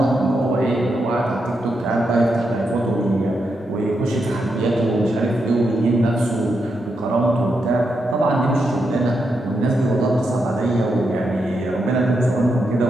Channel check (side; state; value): both; normal; correlation 0.83